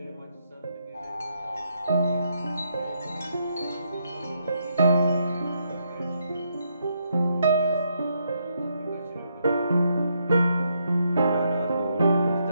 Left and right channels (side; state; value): both; inverted; correlation -0.77